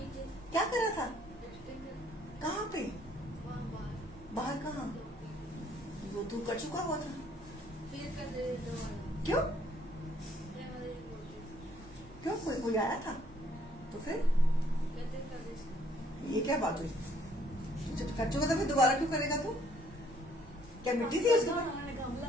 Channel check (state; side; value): normal; both; correlation 0.64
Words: क्या कर रहा था? कहाँ पे? बाहर कहाँ? वो तू कर चुका हुआ था. क्यों क्यों? कोई आया था तो फिर ये क्या बात हुई? जब कर चुका था फिर दोबारा क्यों करेगा तू? क्या मिट्टी थी उसमें?